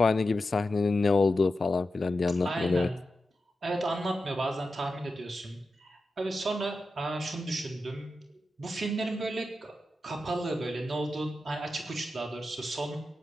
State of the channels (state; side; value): normal; both; correlation 0.91